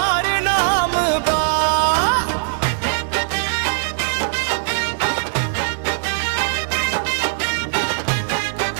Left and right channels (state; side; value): silent; left; 66 dB below the other